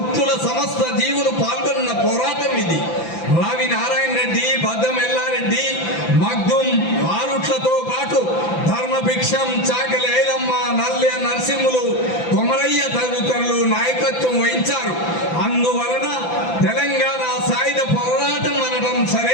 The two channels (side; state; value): right; late; 5.9 ms